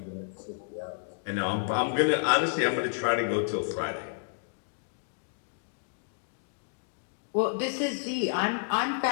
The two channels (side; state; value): right; silent; digital silence